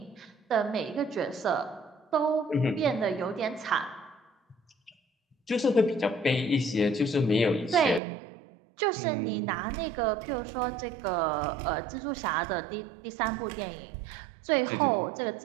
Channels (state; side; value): drops out; left; at 8.0 s